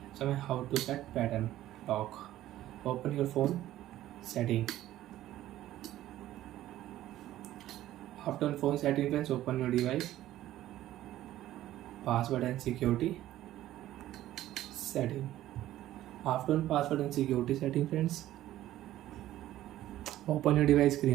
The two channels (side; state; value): left; quieter; 13.9 dB